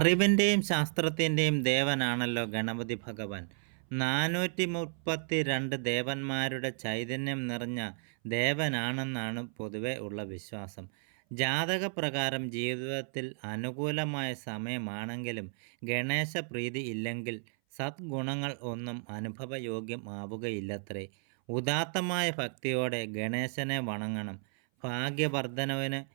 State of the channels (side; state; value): left; silent; 56 dB below the other